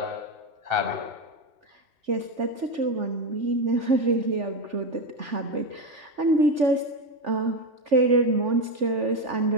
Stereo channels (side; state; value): left; late; 3.4 ms